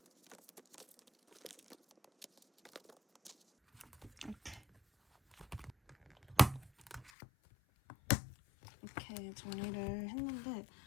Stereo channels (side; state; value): right; drops out; at 7.1 s